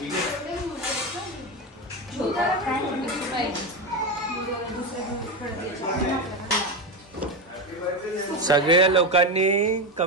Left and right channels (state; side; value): normal; both; correlation 0.14